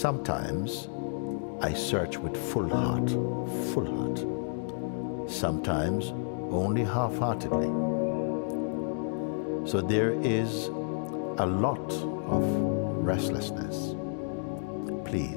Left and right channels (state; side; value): silent; right; digital silence